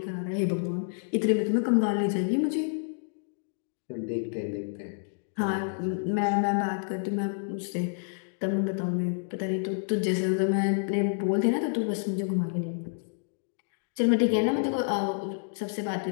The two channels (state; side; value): silent; right; digital silence